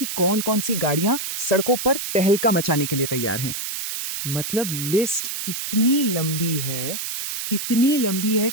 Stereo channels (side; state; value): right; noise; hiss, 5 dB below the sound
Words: कौन कौन सी गाड़ियां सड़कों पर तहलका मचाने के लिए तैयार हैं। मतलब लिस्ट इतनी लंबी है